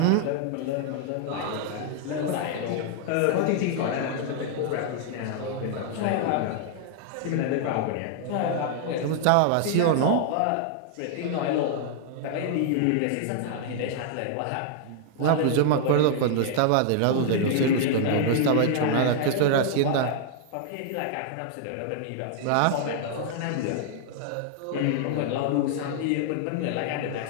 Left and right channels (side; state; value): both; different; correlation 0.00